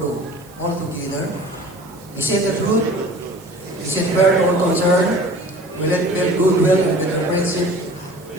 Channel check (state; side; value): noise; right; hiss, 25 dB below the sound